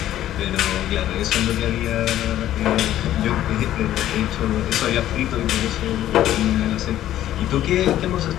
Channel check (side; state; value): right; quieter; 12.7 dB